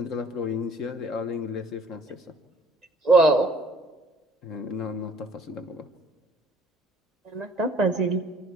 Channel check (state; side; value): normal; both; correlation 0.57